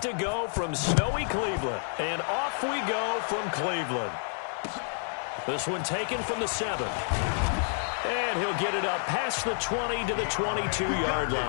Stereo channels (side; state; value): right; silent; digital silence